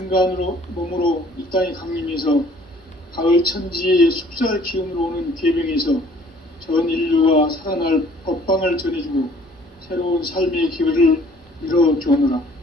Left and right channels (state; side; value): normal; both; correlation 0.56